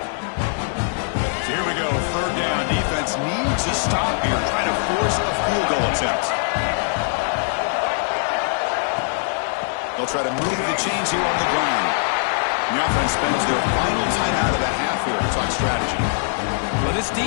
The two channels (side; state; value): right; silent; digital silence